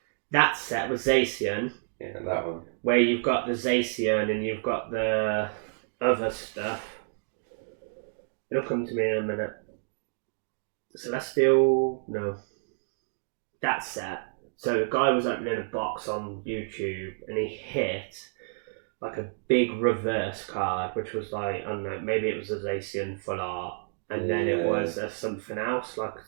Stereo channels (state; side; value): silent; left; digital silence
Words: That set with Zacian. Yeah, that one. Where you've got the Zacian and you've got the other stuff. It'll come to me in a minute. Celestial... No. That set. So the guy was opening a box on YouTube and he hit like a big reverse card, which was like, I don't know, maybe it was a Zacian full art. And then it was something else, like,